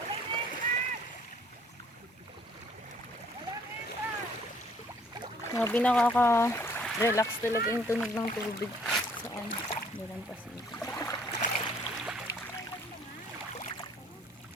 Grabe, nakaka-relax talaga yung tunog ng tubig saan. Dalang Pasig.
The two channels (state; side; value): normal; both; correlation 0.61